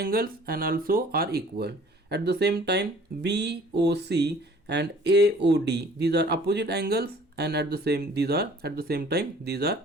and also are equal. At the same time BOC and AOD, these are opposite angles and at the same time these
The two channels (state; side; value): normal; both; correlation 0.52